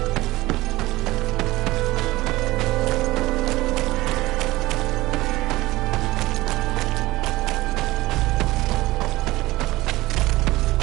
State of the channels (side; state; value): left; quieter; 18.7 dB